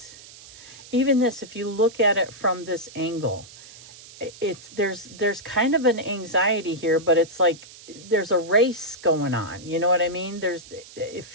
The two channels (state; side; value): noise; right; hiss, 19 dB below the sound